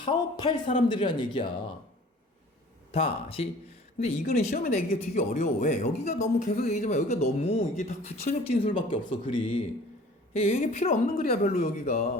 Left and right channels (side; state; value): both; normal; correlation 0.48